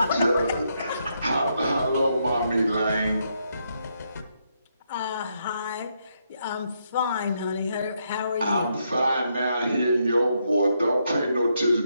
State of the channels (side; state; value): both; inverted; correlation -0.78